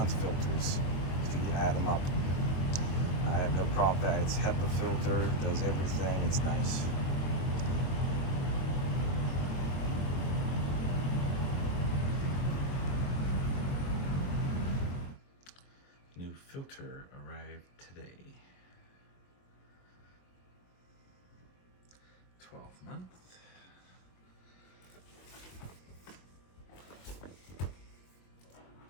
filters if you add them up. I have no problem with that. It's HEPA filter, does everything, it's nice. New filter arrived today. month.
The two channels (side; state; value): right; late; 22 ms